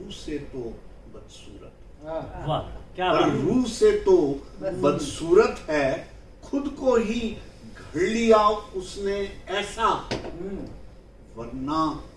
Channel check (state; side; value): identical; both; correlation 1.00